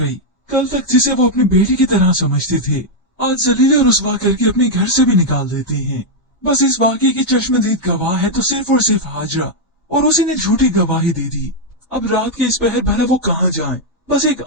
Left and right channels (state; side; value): normal; both; correlation -0.01